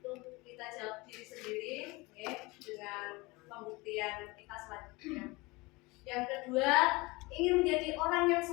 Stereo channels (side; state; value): right; quieter; 23.9 dB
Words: Itu kita jawab diri sendiri, ya, dengan pembuktian kita selanjutnya. Yang kedua, ingin menjadi orang yang